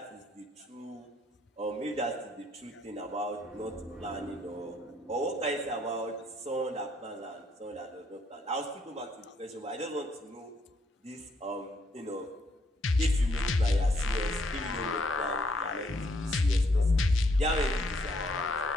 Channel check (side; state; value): both; normal; correlation 0.71